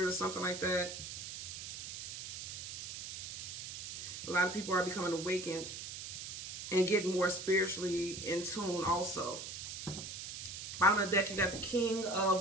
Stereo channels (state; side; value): noise; right; hiss, 8 dB below the sound